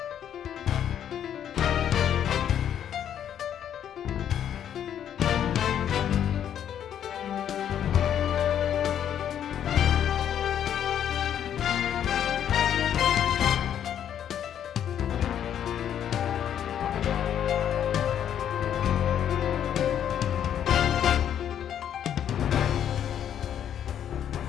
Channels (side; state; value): right; quieter; 9.7 dB